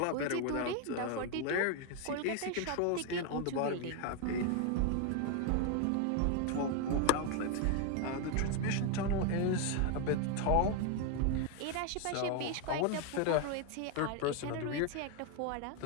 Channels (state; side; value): different; both; correlation 0.01